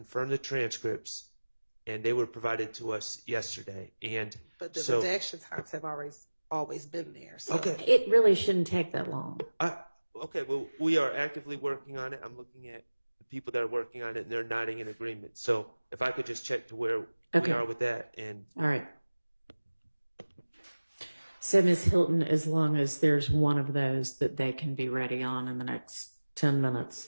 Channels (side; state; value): both; inverted; correlation -1.00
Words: the transcripts, and they were provided to us yesterday. But the redaction times have always been there. So. Okay. It really shouldn't take that long. Okay, well, we are actively working on it. I'm looking at the people that are working on it, and they're nodding in agreement. So if I could just check to where we are with that. All right. So, Ms. Hilton, as long as there's one of those that they can be ready on in the next 10 minutes,